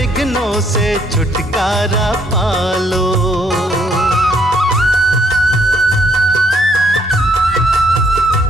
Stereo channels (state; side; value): normal; both; correlation 0.68